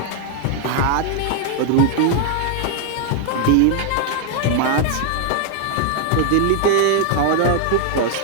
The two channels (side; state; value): both; different; correlation 0.00